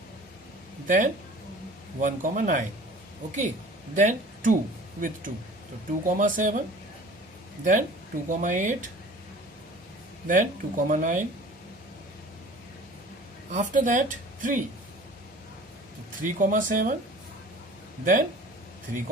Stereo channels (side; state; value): both; normal; correlation 0.45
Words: then 1, 9. Okay, then 2 with 2. So 2, 7, then 2, 8, then 2, 9. After that 3. So 3, 7, then 3,